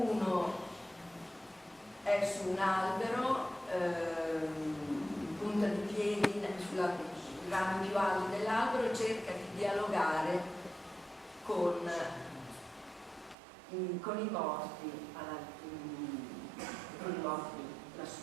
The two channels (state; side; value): drops out; left; at 13.4 s